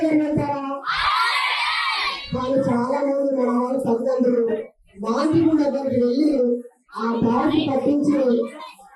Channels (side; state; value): both; identical; correlation 1.00